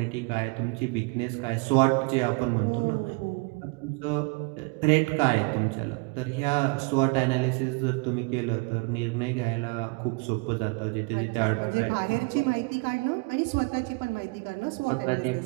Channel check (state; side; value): quieter; left; 29.5 dB